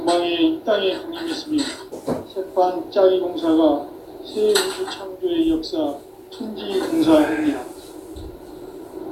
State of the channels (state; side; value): identical; both; correlation 1.00